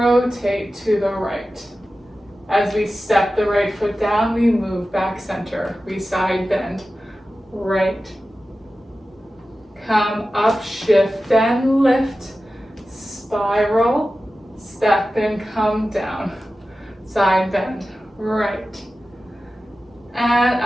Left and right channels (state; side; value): normal; both; correlation 0.94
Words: to the right. As we step the right foot down, we move back center. We side bend, right. Come up, shift and lift, spiral, step and come down. Side bend, right. And